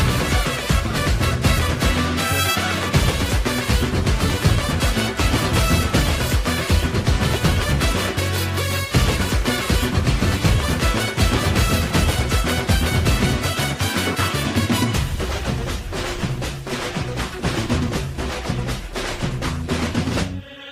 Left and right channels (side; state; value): both; identical; correlation 1.00